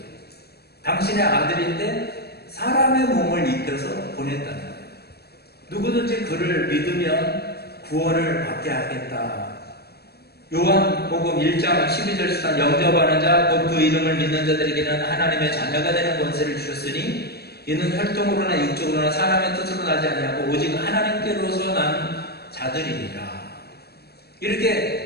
당신의 아들인데 사람의 몸을 입혀서 보냈다는 거예요. 누구든지 그를 믿으면 구원을 받게 하겠다. 요한복음 1장 12절 13 영접하는 자 곧 그 이름을 믿는 자들에게는 하나님의 자녀가 되는 권세를 주셨으니 이는 혈통으로나 육적으로나 사람의 뜻으로 나지 아니하고 오직 하나님께로서 난 자들이니라.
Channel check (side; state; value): right; late; 0.47 ms